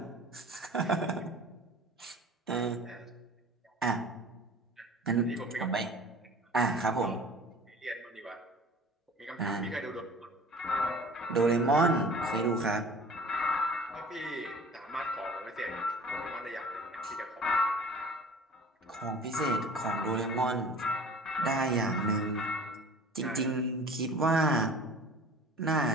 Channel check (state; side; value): normal; both; correlation 0.44